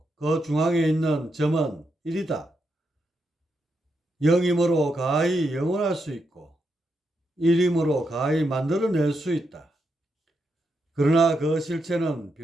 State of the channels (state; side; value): normal; both; correlation 0.82